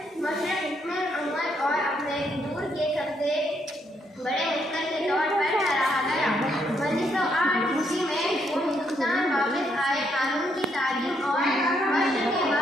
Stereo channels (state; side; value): normal; both; correlation 0.74